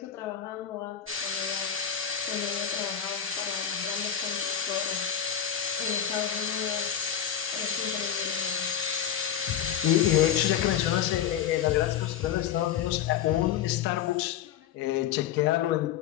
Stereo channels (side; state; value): right; quieter; 9.3 dB